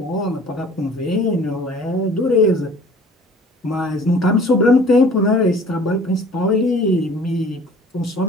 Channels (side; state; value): both; normal; correlation 0.49